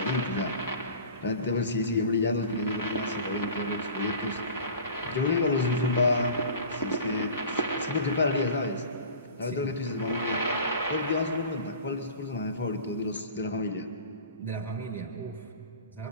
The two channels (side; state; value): both; inverted; correlation -0.40